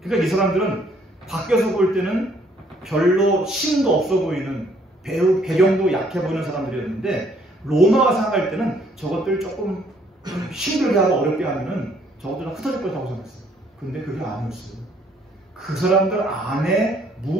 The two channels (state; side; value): normal; both; correlation 0.65